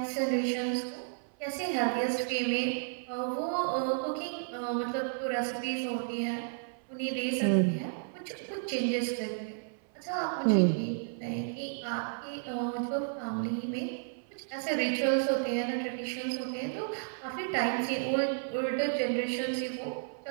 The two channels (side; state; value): left; silent; 56 dB below the other